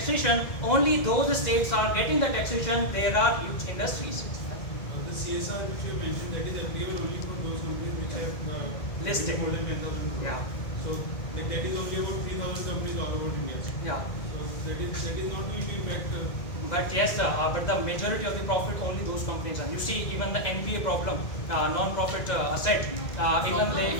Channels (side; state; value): right; late; 2.0 ms